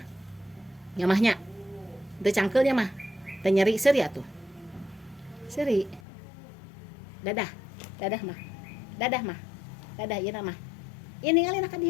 nyamahnya itu cangkelnya mah, teu nyeri seri atuh. Seri. Dadah mah. Dadah ieu mah. Ini ngalina ka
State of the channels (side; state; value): right; drops out; at 6.0 s